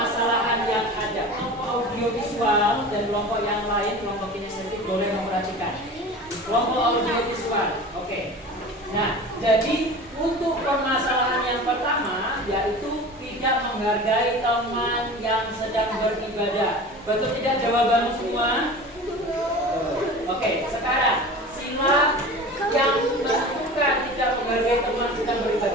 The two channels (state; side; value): normal; both; correlation 0.36